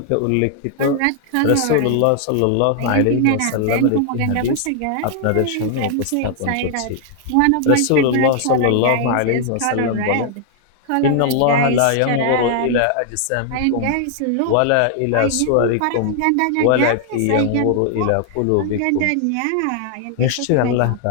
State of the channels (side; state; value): both; different; correlation 0.00